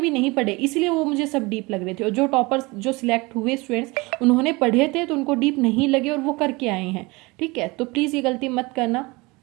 नहीं पढ़े, इसलिए वो मुझे सब डीप लग रहे थे। और जो टॉपर्स जो सिलेक्ट हुए स्टूडेंट्स उन्होंने पढ़े थे तो उनको डीप नहीं लगे और वो करके आए हैं, ठीक है। तो प्लीज़ ये गलती मत करना,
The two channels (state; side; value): quieter; left; 24.4 dB